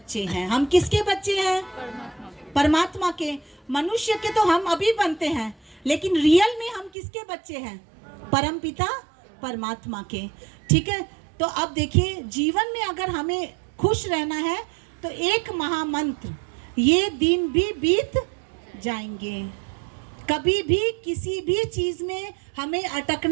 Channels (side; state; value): left; drops out; at 6.9 s